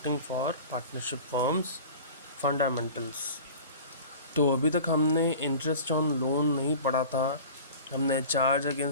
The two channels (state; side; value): inverted; both; correlation -0.40